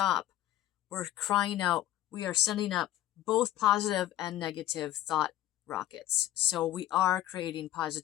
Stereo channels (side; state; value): right; quieter; 13.6 dB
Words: we're crying out, we are sending up both positive and negative thought rockets. So we are creating